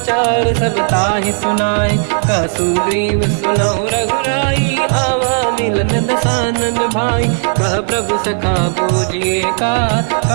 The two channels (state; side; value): silent; left; digital silence